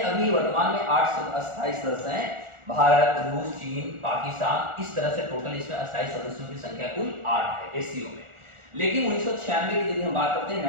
अभी वर्तमान में 8 अस्थायी सदस्य हैं, भारत, रूस, चीन, पाकिस्तान, इस तरह से टोटल इसमें अस्थायी सदस्यों की संख्या कुल 8 है एससीओ में। लेकिन 1996 की यदि हम बात करते हैं,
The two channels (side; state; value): left; late; 1.4 ms